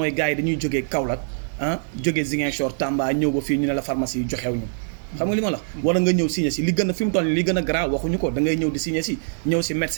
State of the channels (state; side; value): silent; left; digital silence